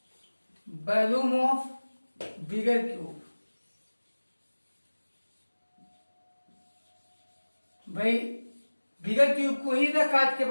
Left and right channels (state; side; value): inverted; both; correlation -1.00